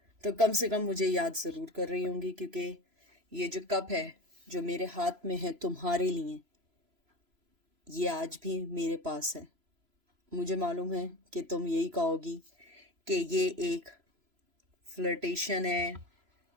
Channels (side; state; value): left; late; 3.0 ms